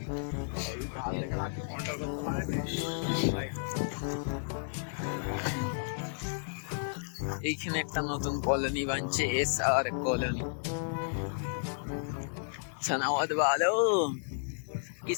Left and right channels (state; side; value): silent; right; 56 dB below the other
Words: এইখানে একটা নতুন কলোনি বানছে, SR কলোনি। सनावत वालों